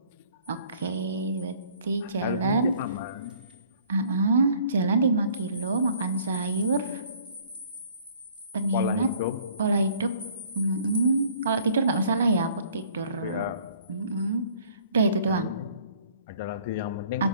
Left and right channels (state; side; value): inverted; both; correlation -0.56